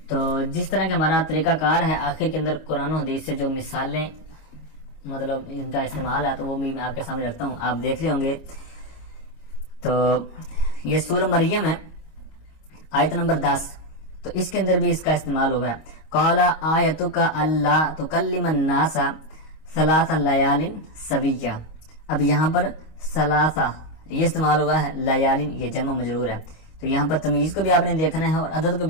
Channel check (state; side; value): late; right; 25 ms